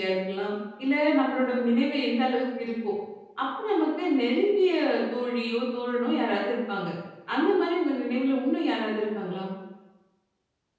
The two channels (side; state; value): both; identical; correlation 1.00